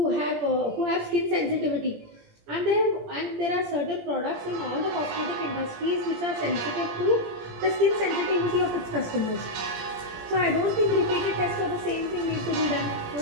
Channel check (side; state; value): left; late; 17 ms